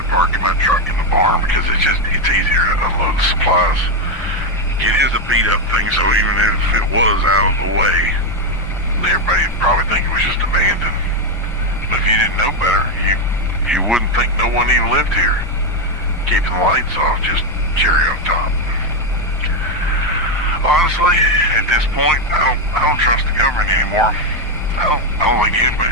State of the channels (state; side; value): normal; both; correlation 0.06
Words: parking my truck in the barn because it's easier to unload the supplies. It is a beat up thing, so even if it was out of the way, everybody would probably think it was just abandoned. But if you didn't know better, you wouldn't think no one even lived here. Keeping the lights off, just cherry on top. Honestly, at this point, I don't trust the government anymore. I don't think